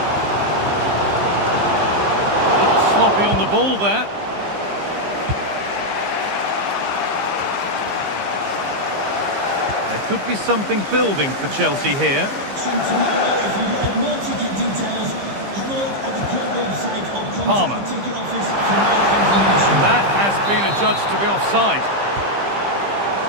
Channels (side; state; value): left; late; 15 ms